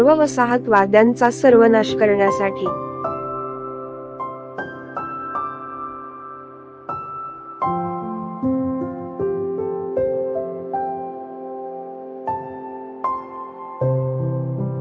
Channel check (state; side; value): identical; both; correlation 1.00